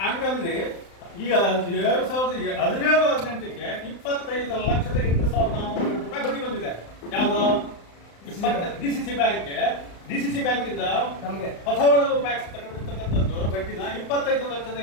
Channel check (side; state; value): right; late; 35 ms